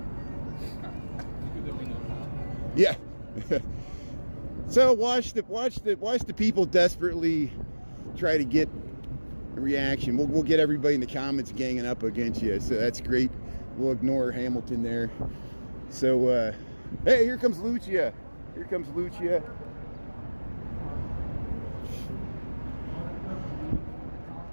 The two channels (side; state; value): both; inverted; correlation -1.00